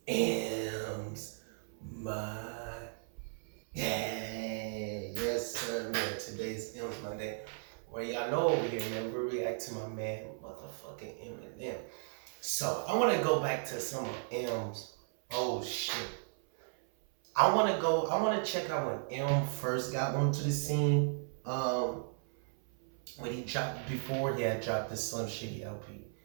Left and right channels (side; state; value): left; silent; 54 dB below the other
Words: M's yes, sir, man. Today's M's Monday. Well, y'all know over here, man, we react to my man, motherfucking Eminem. So, I want to go back to some of M's. Oh, shit. I want to check out when M first got onto the scene. When he dropped, before he had dropped the Slim Shady LP.